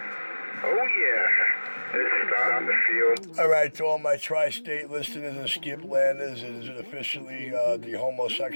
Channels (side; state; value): both; inverted; correlation -1.00